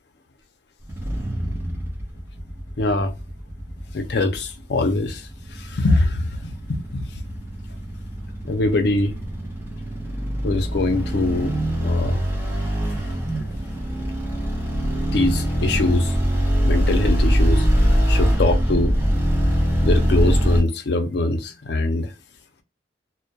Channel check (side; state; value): both; normal; correlation 0.79